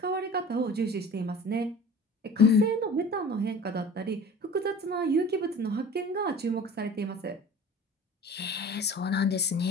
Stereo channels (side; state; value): both; normal; correlation 0.41